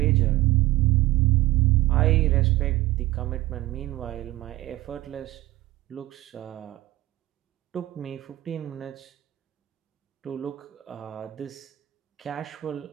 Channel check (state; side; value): quieter; left; 17.3 dB